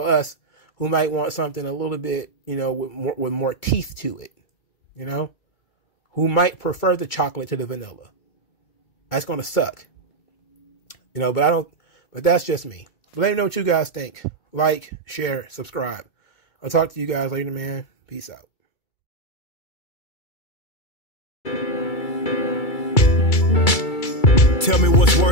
us who might want something a little bit, you know, with more teeth to it, you know, who might prefer the chocolate to the vanilla. That's going to suck, you know, but that's just me. But let me know what you guys think. Like, share, subscribe. I'll talk to you guys later, man. Peace out. Tell me what's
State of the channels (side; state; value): right; late; 2.3 ms